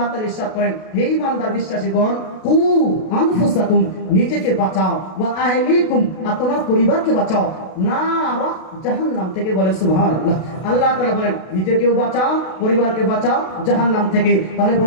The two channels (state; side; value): late; right; 32 ms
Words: তাআলা ইরশাদ করেন হে ঈমানদার বিশ্বাসীগণ, কু আনফুসাকুম, নিজেকে বাঁচাও, ওয়া আহলিকুম, আর তোমার পরিবারকে বাঁচাও, নারা, জাহান্নাম থেকে। বলেন সুবহানাল্লাহ। আল্লাহ তাআলা বলেন নিজেকেও বাঁচাও, পরিবারকে বাঁচাও জাহান্নাম থেকে। তাহলে